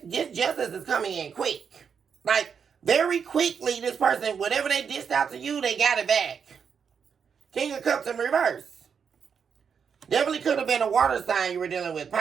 justice is coming in quick. Like, very quickly, this person, whatever they dished out to you, they got it back. King of Cups in reverse. Definitely could have been a water sign you were dealing with.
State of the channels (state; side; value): quieter; left; 6.7 dB